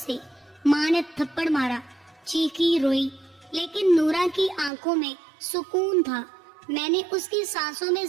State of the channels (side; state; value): left; drops out; at 4.7 s